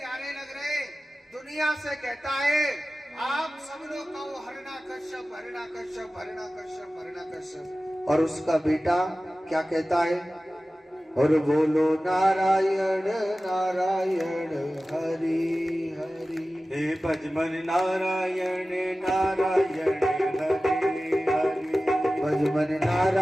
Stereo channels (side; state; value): both; normal; correlation 0.96